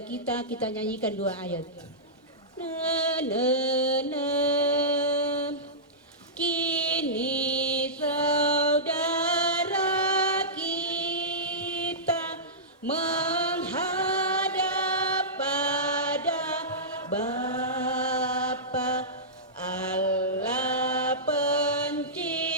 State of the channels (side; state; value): both; normal; correlation -0.16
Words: kita nyanyikan 2 ayat. Na na na. Kini saudara kita menghadap pada Bapa Allah